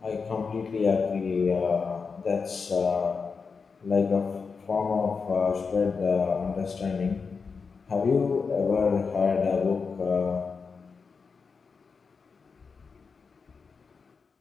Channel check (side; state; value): right; quieter; 5.1 dB